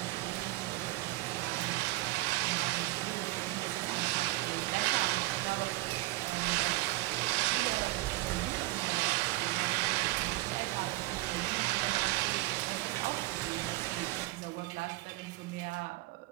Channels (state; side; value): quieter; left; 19.6 dB